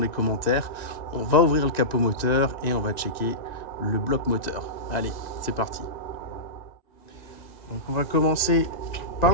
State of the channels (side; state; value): right; late; 1.9 ms